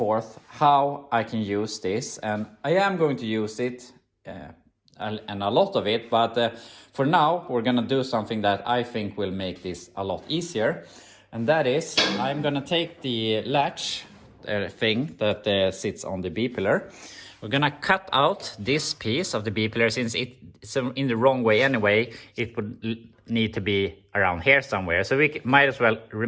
how I can use this, and I am going to use it and a lot of it, but for now we're gonna do something that I think will make this a lot easier. And that is, I'm gonna take the latch thing that sits on the B pillar. We're gonna cut out this piece of the B pillar. Since it's in the wrong way anyway, it would need to be around here somewhere. So we might as well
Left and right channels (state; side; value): identical; both; correlation 1.00